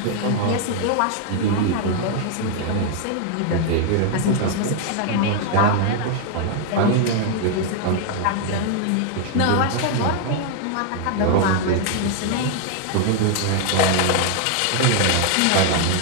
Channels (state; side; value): different; both; correlation 0.00